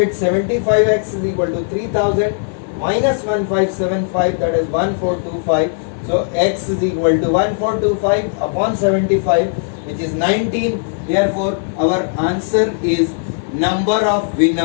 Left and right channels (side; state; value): right; silent; digital silence